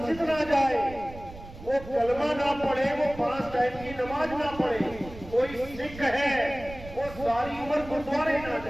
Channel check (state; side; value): noise; right; rumble, 15 dB below the sound